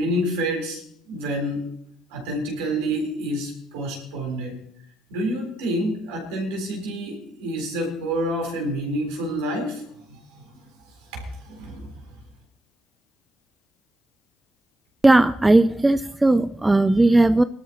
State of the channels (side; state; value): both; normal; correlation 0.84